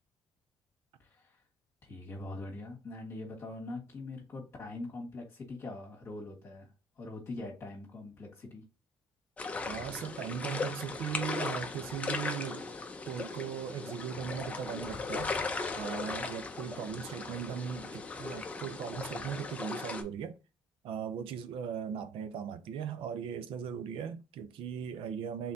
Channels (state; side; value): normal; both; correlation 0.52